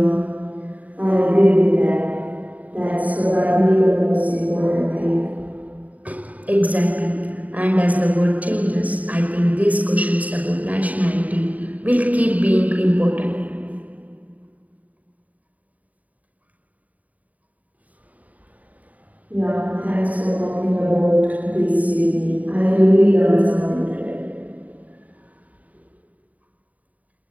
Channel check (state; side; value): late; left; 0.072 ms